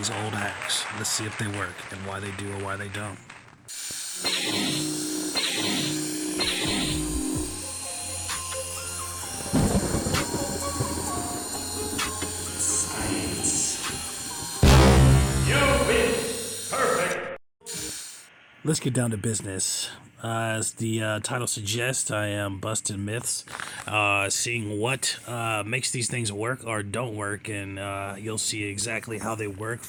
old hacks. Let's see if they work and why they do or why they don't. You've been perfect. Let's get down to business. As the title suggests, I am busting myths, seeing what makes these things work or don't work, and you'll see exactly how they work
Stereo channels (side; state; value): both; identical; correlation 1.00